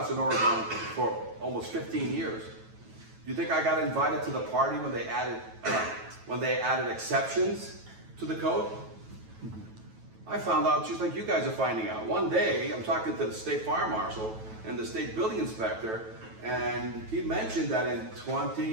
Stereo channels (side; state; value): left; late; 9.2 ms